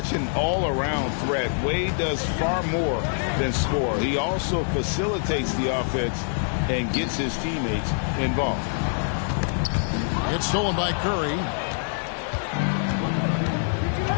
an all-around threat. Wade does far more than score. He also facilitates the offense and gets his teammates involved. It's stolen by Curry.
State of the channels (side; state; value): right; silent; 62 dB below the other